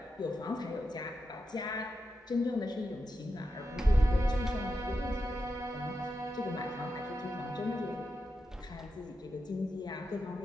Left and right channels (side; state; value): both; normal; correlation 0.88